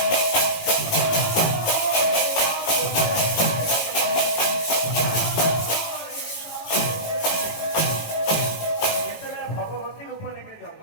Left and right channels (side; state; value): right; late; 18 ms